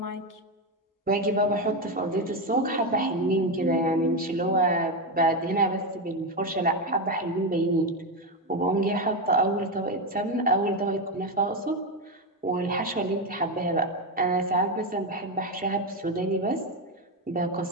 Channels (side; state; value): both; normal; correlation 0.10